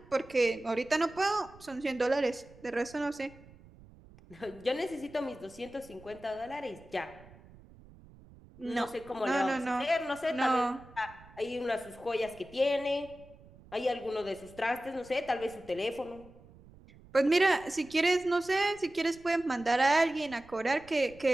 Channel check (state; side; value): noise; right; rumble, 23 dB below the sound